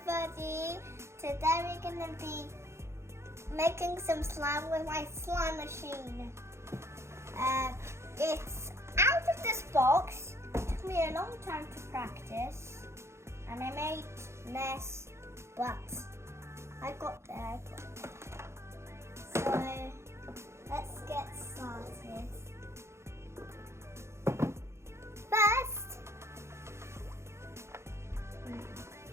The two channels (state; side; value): late; left; 0.13 ms